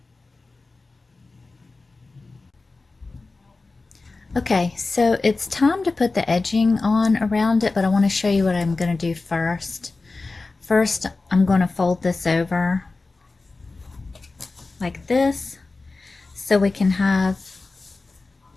Okay, so it's time to put the edging on around it, but I want to show you what I'm going to do first. First, I'm going to fold this over like this, so we can have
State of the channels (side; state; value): right; quieter; 3.6 dB